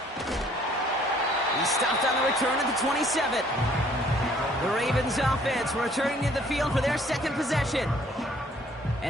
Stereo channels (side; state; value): both; normal; correlation 0.59